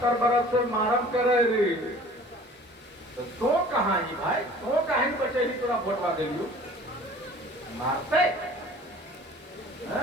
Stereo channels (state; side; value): normal; both; correlation 0.47